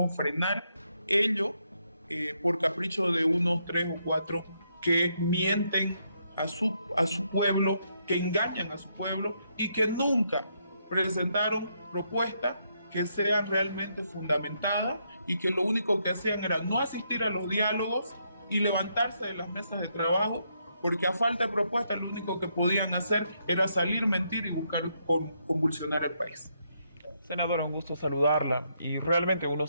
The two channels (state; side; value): inverted; both; correlation -0.76